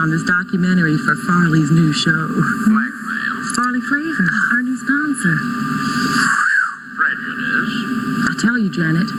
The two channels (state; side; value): identical; both; correlation 1.00